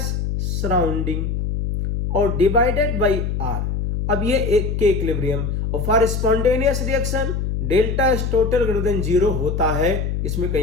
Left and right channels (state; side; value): noise; left; hum, 1 dB below the sound